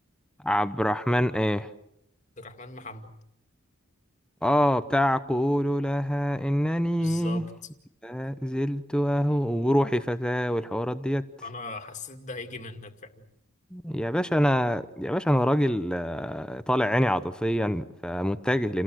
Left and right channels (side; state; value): both; normal; correlation 0.93